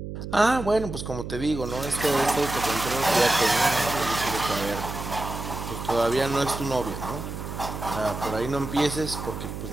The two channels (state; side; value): noise; right; hum, 8 dB below the sound